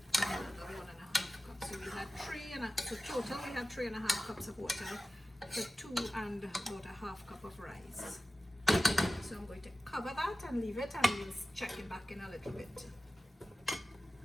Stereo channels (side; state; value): both; normal; correlation 0.95